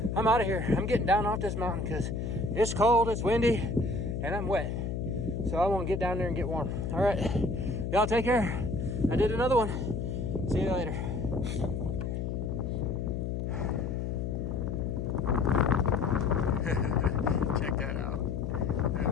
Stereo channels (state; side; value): noise; left; hum, 2 dB below the sound